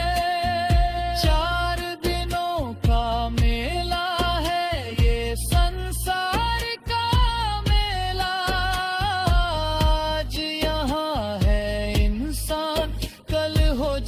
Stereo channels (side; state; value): both; identical; correlation 1.00